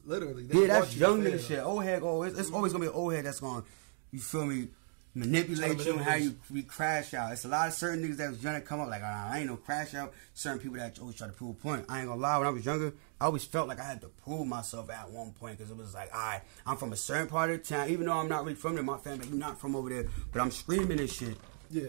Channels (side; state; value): left; silent; 54 dB below the other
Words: Literally. Yeah, that's young nigga shit. Old head, it's always gonna be an old head that's gonna, you feel me, manipulate you and how you crash out. It's a lot of certain niggas that was trying to come up like, I ain't no crash out. Certain people that always try to prove a point. I ain't gonna lie, when I was younger, I always felt like I had to prove myself at one point because it was like, alright, I'm from a certain part of the town, even though I'm not really from there, my family, you're not from over there, but I'm screaming this shit.